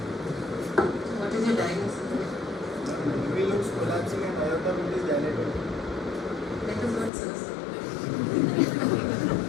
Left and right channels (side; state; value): right; drops out; at 7.1 s